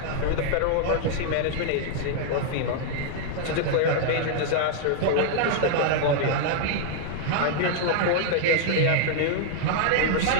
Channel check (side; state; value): both; different; correlation -0.01